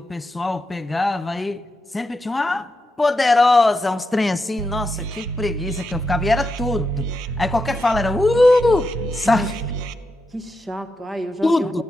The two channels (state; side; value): normal; both; correlation 0.86